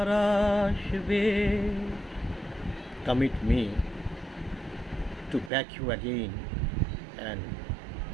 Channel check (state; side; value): drops out; left; at 5.5 s